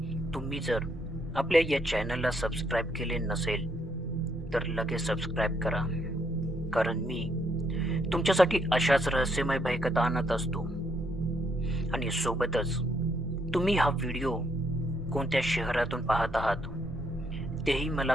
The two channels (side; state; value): both; normal; correlation 0.73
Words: तुम्ही जर आपल्या या चॅनलला सबस्क्राईब केले नसेल तर लगेच सबस्क्राईब करा, कारण मी तुमच्यासाठी अशाच रहस्यमय भयकथा आणत असतो. आणि सोबतच तुम्ही हा व्हिडिओ कोणत्या शहरातून पाहत आहात तेही मला